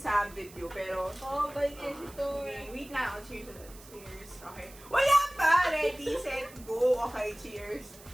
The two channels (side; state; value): right; noise; hiss, 20 dB below the sound